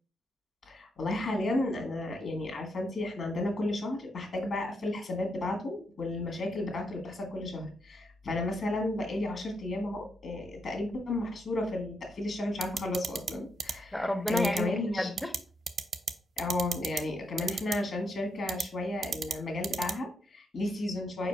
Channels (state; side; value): normal; both; correlation 0.79